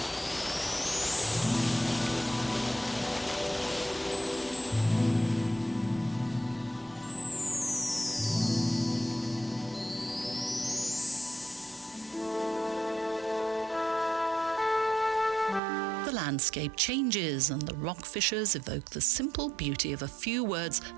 The landscape changes and the rock fissures evoke the simple beauty of a few words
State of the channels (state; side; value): drops out; left; at 15.6 s